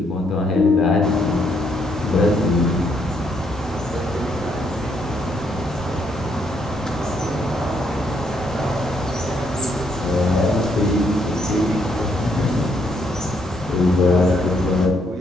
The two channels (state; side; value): normal; both; correlation 0.73